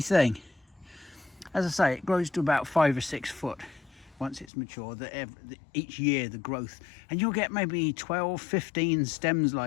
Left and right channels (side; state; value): right; drops out; at 4.5 s